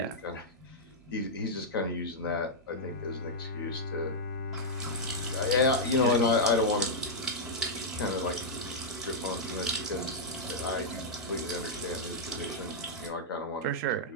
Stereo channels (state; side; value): normal; both; correlation -0.06